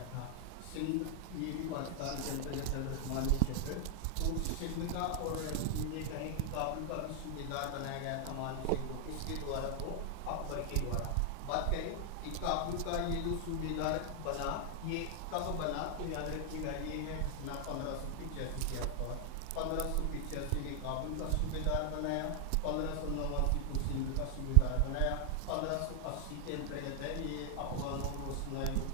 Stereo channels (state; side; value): different; both; correlation 0.00